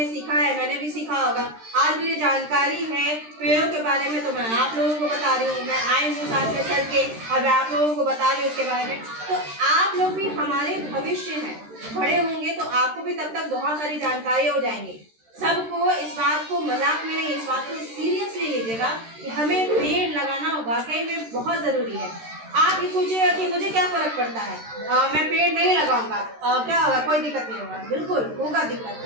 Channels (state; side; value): late; left; 13 ms